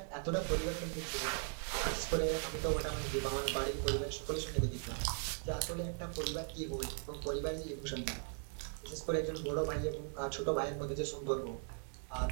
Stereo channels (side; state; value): left; silent; 52 dB below the other